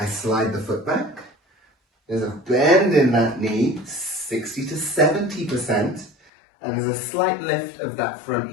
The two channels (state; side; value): drops out; right; at 6.3 s